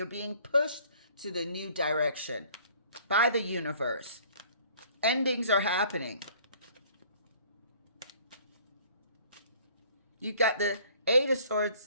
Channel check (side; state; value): both; inverted; correlation -0.55